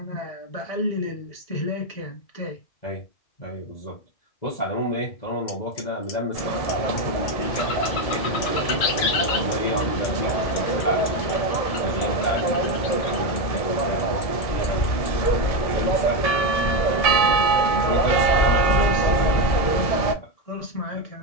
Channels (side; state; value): right; late; 1.7 ms